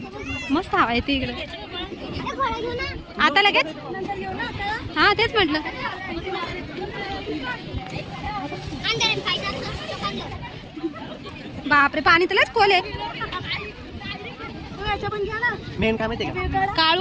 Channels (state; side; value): identical; both; correlation 1.00